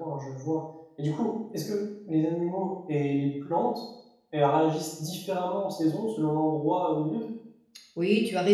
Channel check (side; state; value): both; identical; correlation 1.00